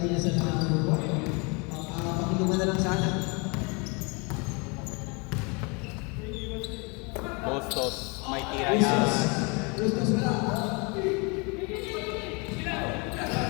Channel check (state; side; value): quieter; right; 30.8 dB